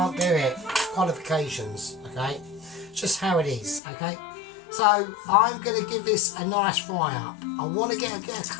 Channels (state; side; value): drops out; right; at 3.8 s